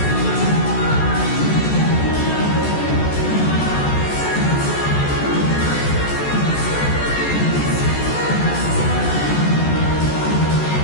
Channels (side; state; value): right; late; 14 ms